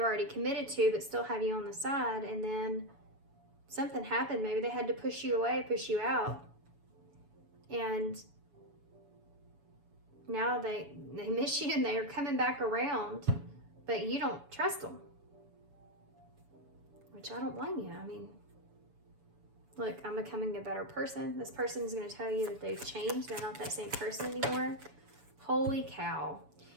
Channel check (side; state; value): left; late; 7.1 ms